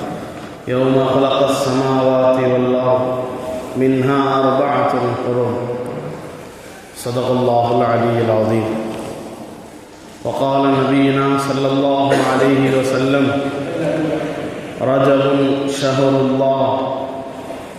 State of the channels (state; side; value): identical; both; correlation 1.00